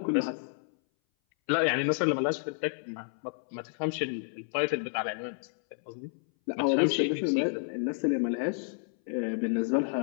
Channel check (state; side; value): silent; right; 58 dB below the other